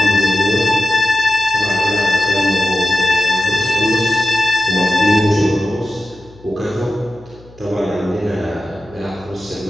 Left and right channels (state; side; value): noise; left; hum, 24 dB below the sound